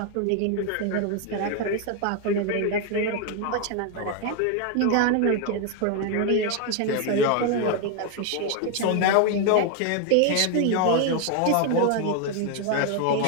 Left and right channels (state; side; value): different; both; correlation 0.01